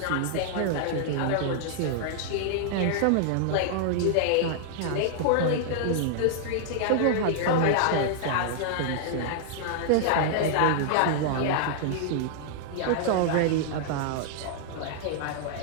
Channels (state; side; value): different; both; correlation -0.01